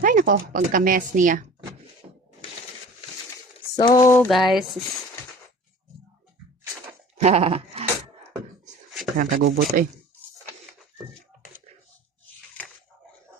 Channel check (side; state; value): both; normal; correlation 0.41